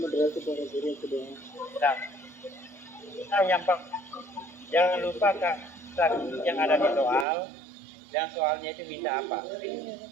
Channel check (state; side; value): drops out; left; at 7.2 s